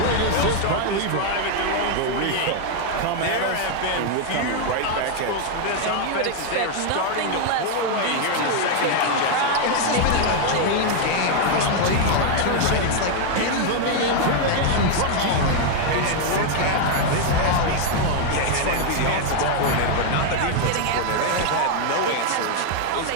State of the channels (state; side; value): different; both; correlation 0.00